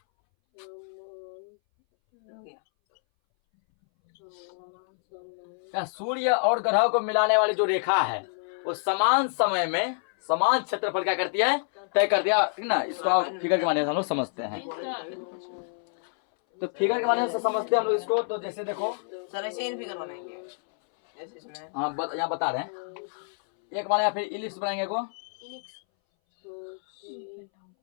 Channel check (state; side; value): silent; right; 60 dB below the other